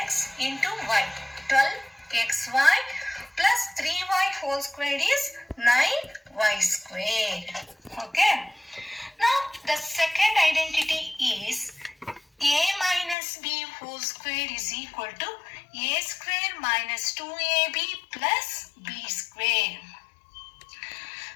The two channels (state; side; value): drops out; right; at 13.2 s